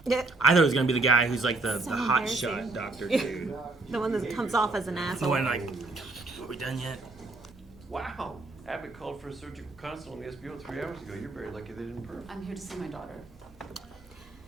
I thought it was gonna be the guy who's like the So hot embarrassing. shot doctor dude. The one that comes off as an The asshole. one like, are we done yet? Wow. Abbott called for a surgical consult on the SBO 3 hours ago. You're very lucky they didn't perm. I'm here to see my daughter.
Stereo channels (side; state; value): left; quieter; 3.2 dB